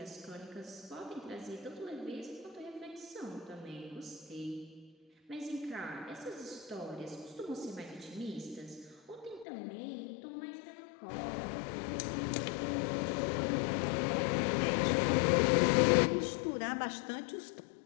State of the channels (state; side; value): drops out; right; at 9.5 s